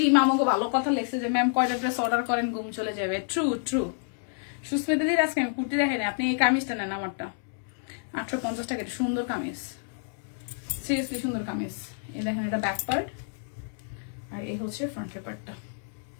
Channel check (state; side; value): silent; right; digital silence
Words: আমাকে ভালো কথা লেগছে যে ম্যাম কয়টা ড্রেস অর্ডার করেন ঘুম চলে যাবে। True true. সুস্মিতা দিদি আজকে আমি কুর্তি দেখেন, আপনি এই কামিজটা নেন আমারটা, 850 টাকা। সুন্দর কামিজ, সিরিয়াসলি সুন্দর কামিজ। এই দেখেন এটা ব্যাক পার্ট আর এই হচ্ছে ফ্রন্টের পার্টটা।